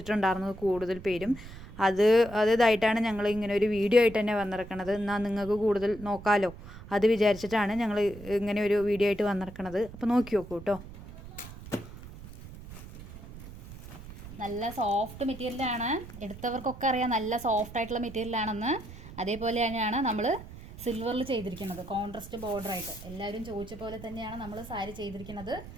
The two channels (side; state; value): right; noise; rumble, 15 dB below the sound